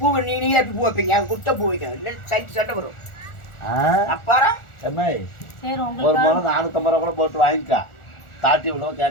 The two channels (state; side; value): late; right; 1.4 ms